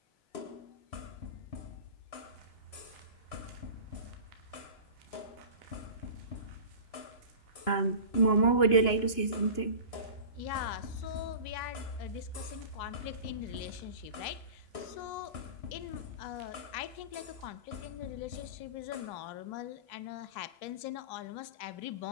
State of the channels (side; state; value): right; late; 2.9 ms